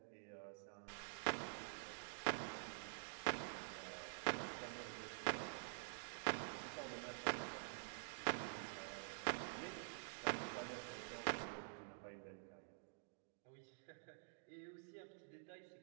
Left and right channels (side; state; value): left; silent; digital silence